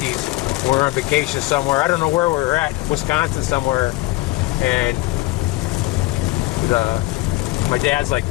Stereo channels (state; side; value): quieter; right; 19.2 dB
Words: We were on vacation somewhere. I don't know where we were at, Wisconsin somewhere. And my dad's like,